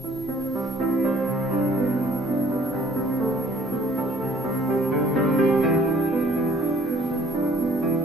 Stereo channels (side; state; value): both; normal; correlation 0.57